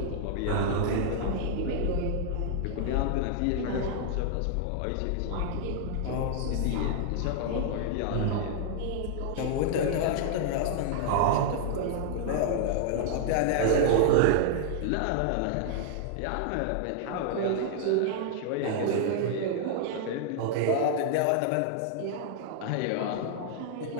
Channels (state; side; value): different; both; correlation -0.01